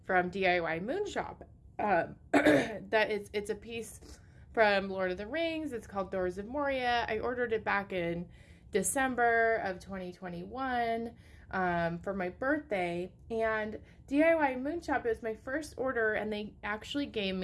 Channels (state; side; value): identical; both; correlation 1.00